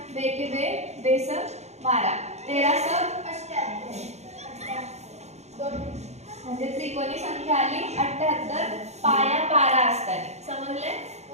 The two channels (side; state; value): left; late; 0.32 ms